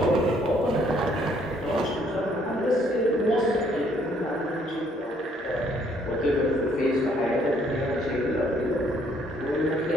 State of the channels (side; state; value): both; normal; correlation 0.66